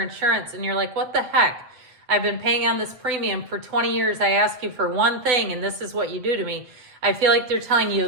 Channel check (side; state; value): left; late; 7.8 ms